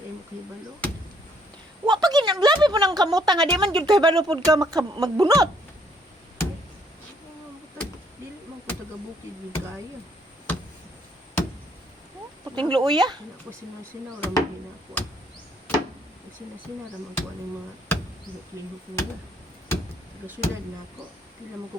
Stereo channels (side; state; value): both; normal; correlation 0.66